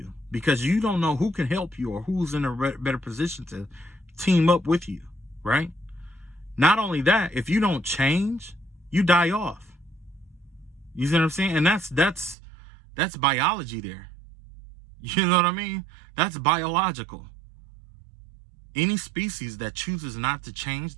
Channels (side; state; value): left; drops out; at 12.4 s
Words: because you don't know who can help you or who's in a better position to team up with you, right? Not only that, if you don't change, you die off. You see what I'm saying? And that's biology there. You know what I mean? That's biological. Any species that chooses not to change